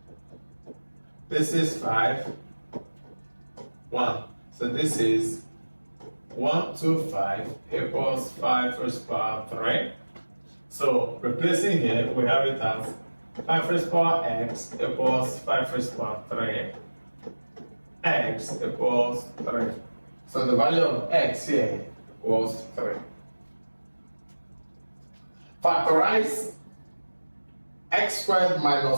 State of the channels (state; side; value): inverted; both; correlation -1.00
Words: This is 5, 1. So this is 125 equals 5 raised to power 3. So replacing here, we have it as 5 raised to power x equals 5 raised to power 3. X equals 3. So the value of x here was 3. Factorize x squared